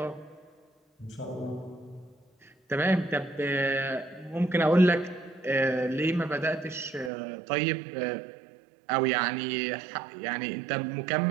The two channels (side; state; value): left; drops out; at 7.1 s